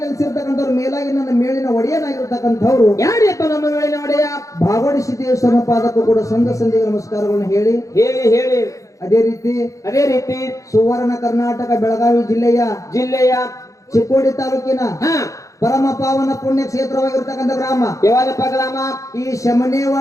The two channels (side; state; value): right; late; 0.16 ms